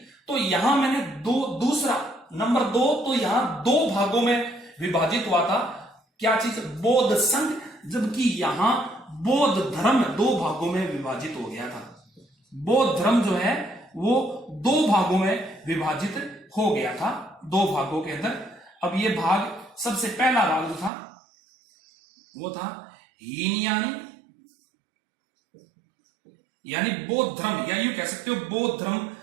तो यहां मैंने दूसरा नंबर 2, तो यहां 2 भागों में विभाजित हुआ था। क्या चीज? बौद्ध संघ, जबकि यहां बौद्ध धर्म 2 भागों में विभाजित हो गया था। बौद्ध धर्म जो है वो 2 भागों में विभाजित हो गया था, 2 भागों के अंदर। अब ये भाग, सबसे पहला भाग जो था वो था हीनयानी, यानी बौद्ध धर्म, या यूं कह सकते हो बौद्ध धर्म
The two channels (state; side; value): drops out; left; at 20.9 s